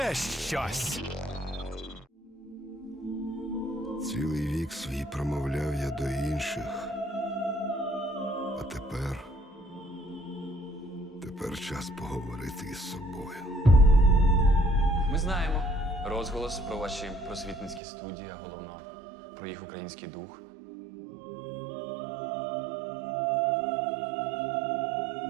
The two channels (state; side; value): drops out; left; at 17.8 s